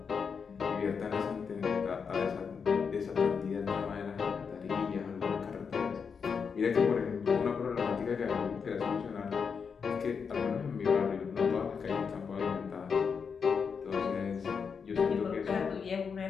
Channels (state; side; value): quieter; right; 6.0 dB